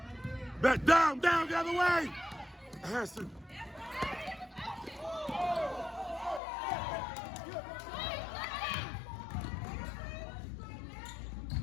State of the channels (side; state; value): right; drops out; at 6.4 s